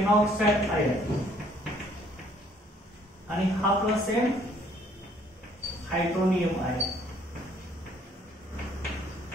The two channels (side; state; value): both; normal; correlation 0.61